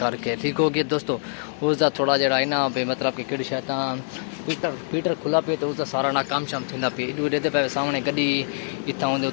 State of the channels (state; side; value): silent; right; digital silence